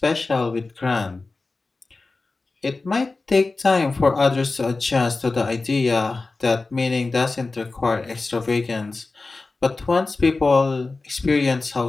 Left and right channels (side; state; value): right; quieter; 3.6 dB